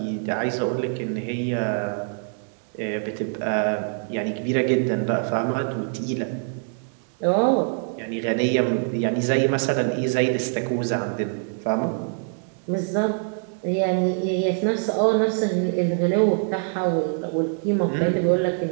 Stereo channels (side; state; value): left; silent; 61 dB below the other